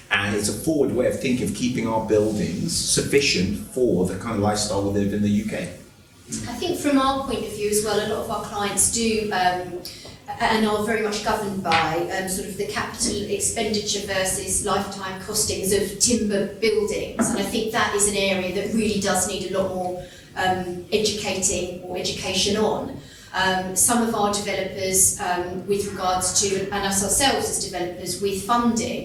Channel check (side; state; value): both; identical; correlation 1.00